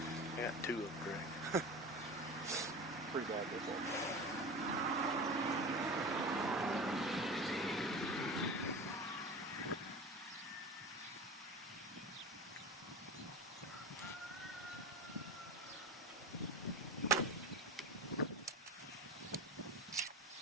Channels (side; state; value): both; normal; correlation 0.30